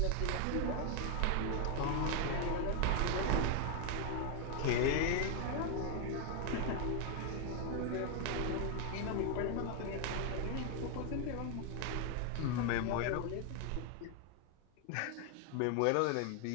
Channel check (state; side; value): different; both; correlation 0.00